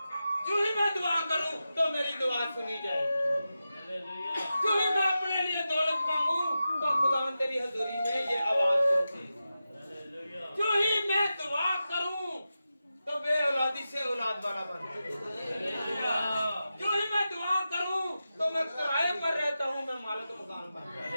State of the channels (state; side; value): inverted; both; correlation -0.92